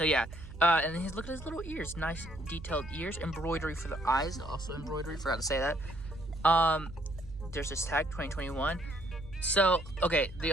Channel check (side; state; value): right; noise; hum, 14 dB below the sound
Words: yeah. And then look at his little ears. Nice detailed ears. Embroidery for the eyes. Also embroidery. Forgot to say that. There's this tag, 2021. So, okay, the